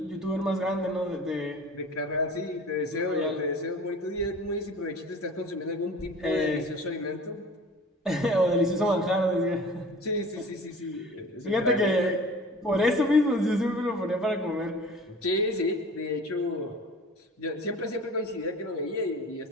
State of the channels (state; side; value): normal; both; correlation 0.42